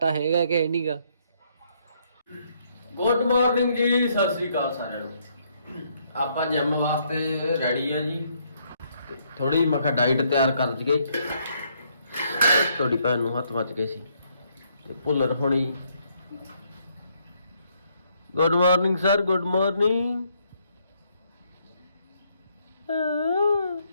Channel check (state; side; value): inverted; both; correlation -0.71